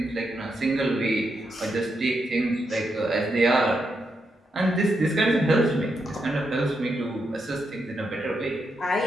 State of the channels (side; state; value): both; normal; correlation 0.83